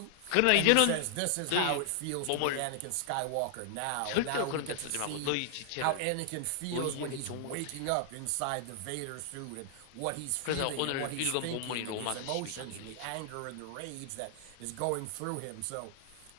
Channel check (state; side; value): different; both; correlation 0.00